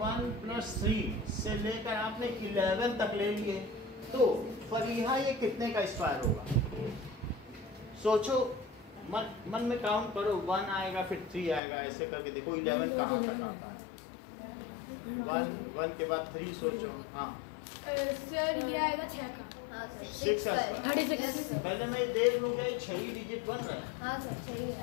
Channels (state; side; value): drops out; right; at 11.6 s